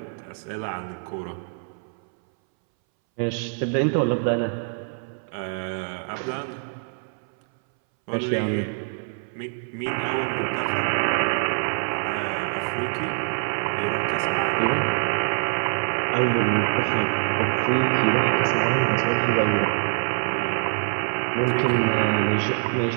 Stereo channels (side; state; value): left; silent; 62 dB below the other